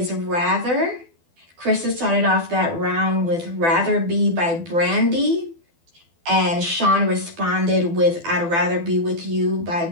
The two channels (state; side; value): late; left; 12 ms